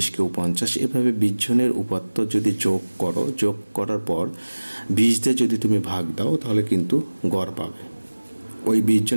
কেউ 50, এভাবে 20 জনের উপাত্ত যদি যোগ করো, যোগ করার পর 20 দিয়ে যদি তুমি ভাগ দাও তাহলে কিন্তু গড় পাবে। ওই 20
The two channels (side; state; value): both; inverted; correlation -1.00